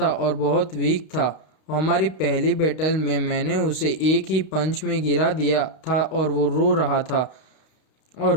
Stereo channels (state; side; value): late; right; 32 ms